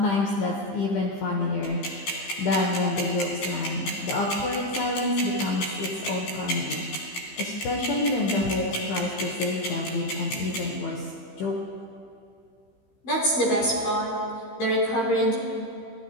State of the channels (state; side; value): late; right; 15 ms